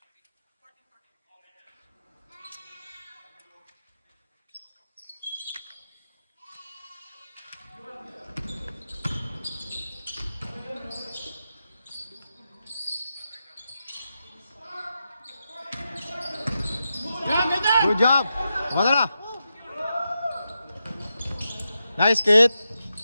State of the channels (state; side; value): inverted; both; correlation -0.88